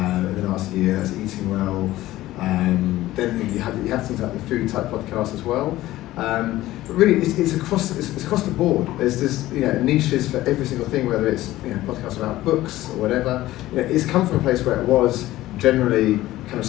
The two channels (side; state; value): right; quieter; 15.9 dB